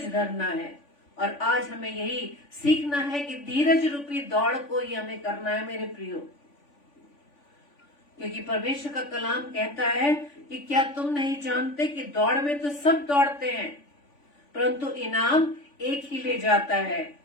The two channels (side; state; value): right; late; 3.5 ms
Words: धरना है। और आज हमें यही सीखना है कि धीरज रूपी दौड़ को ही हमें करना है मेरे प्रियो। क्योंकि परमेश्वर का कलाम कहता है कि क्या तुम नहीं जानते कि दौड़ में तो सब दौड़ते हैं, परंतु इनाम एक ही ले जाता है।